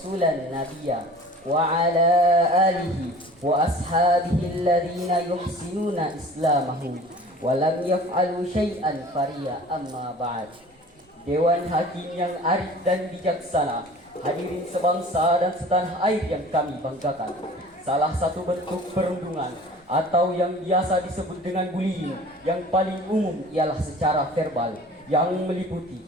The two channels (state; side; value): normal; both; correlation 0.44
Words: nabiyya wa ala alihi wa ashabihi alladhina yuhsinuna islamahum wa lam yaf'alu syai'an fariya amma ba'd. Dewan Hakim yang arif dan bijaksana, hadirin sebangsa dan setanah air yang kami banggakan. Salah satu bentuk perundungan atau yang biasa disebut dengan bullying yang paling umum ialah secara verbal yang